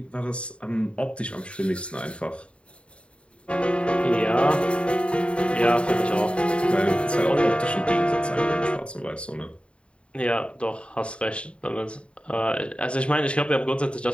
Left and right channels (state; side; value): late; right; 0.058 ms